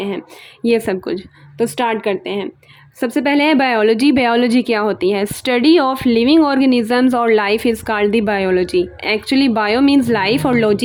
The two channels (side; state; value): both; identical; correlation 1.00